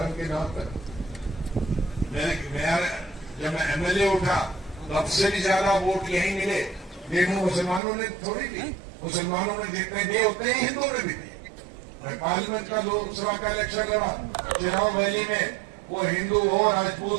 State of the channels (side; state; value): left; drops out; at 7.8 s